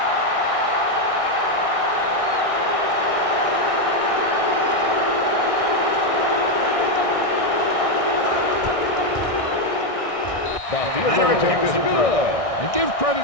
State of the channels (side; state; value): right; late; 1.6 ms